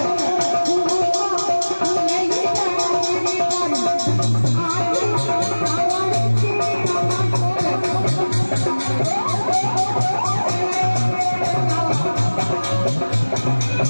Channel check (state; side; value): inverted; both; correlation -1.00